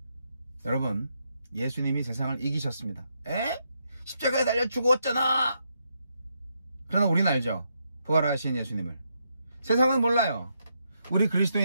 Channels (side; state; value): both; inverted; correlation -0.80